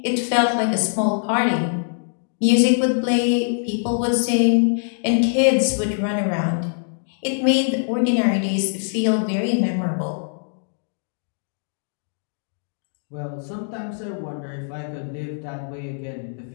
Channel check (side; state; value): right; silent; digital silence